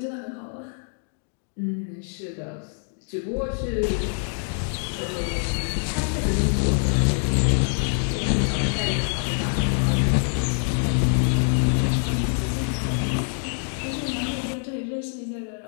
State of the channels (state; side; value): silent; right; 55 dB below the other